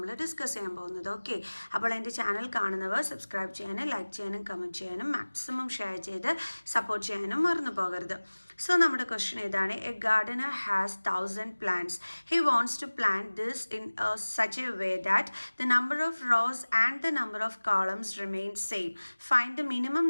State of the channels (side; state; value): both; inverted; correlation -1.00